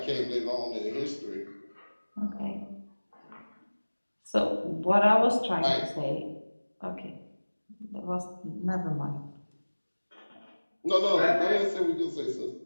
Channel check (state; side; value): inverted; both; correlation -1.00